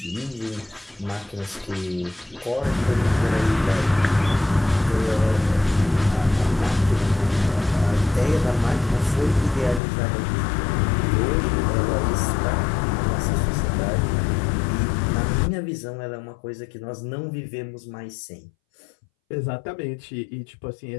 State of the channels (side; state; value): right; drops out; at 9.8 s